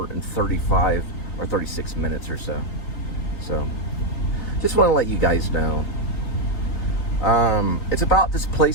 and 35 or 36 minutes or so. So just want to let you guys know. It's about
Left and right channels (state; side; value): late; right; 3.9 ms